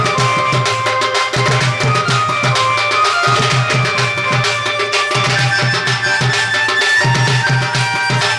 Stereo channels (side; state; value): both; identical; correlation 1.00